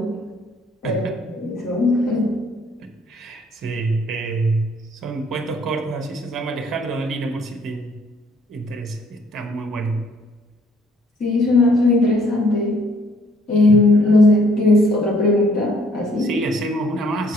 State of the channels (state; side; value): normal; both; correlation 0.62